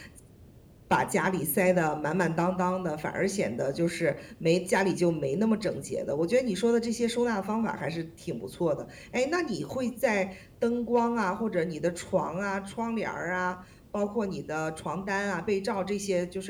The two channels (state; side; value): identical; both; correlation 1.00